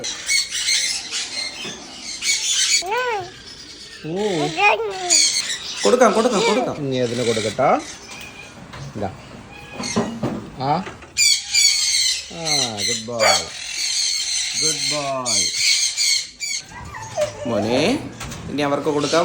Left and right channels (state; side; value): identical; both; correlation 1.00